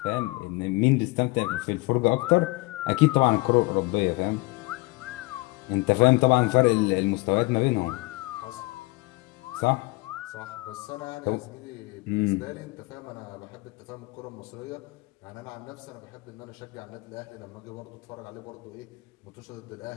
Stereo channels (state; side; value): quieter; right; 23.9 dB